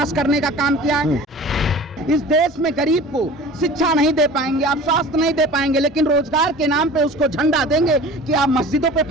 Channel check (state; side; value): normal; both; correlation 0.41